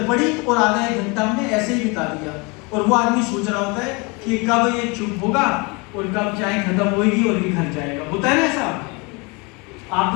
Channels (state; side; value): quieter; right; 28.9 dB